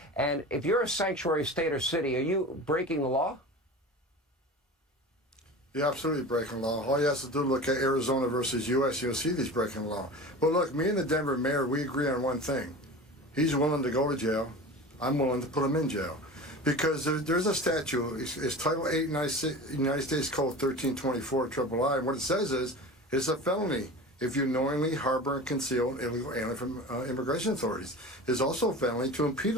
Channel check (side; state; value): both; normal; correlation 0.34